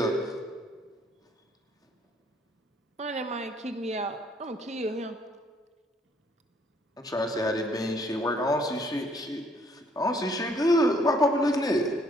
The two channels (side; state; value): both; normal; correlation 0.64